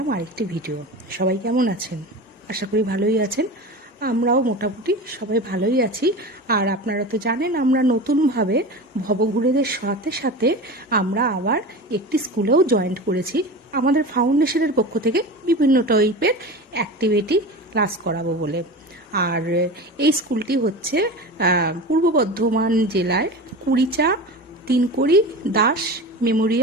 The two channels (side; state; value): both; normal; correlation 0.30